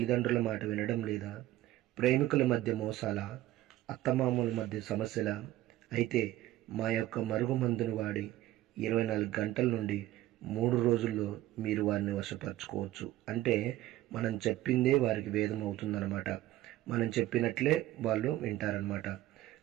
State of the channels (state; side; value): quieter; left; 15.2 dB